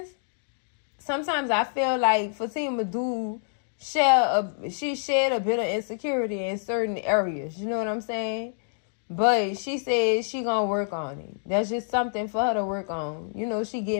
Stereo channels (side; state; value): right; silent; digital silence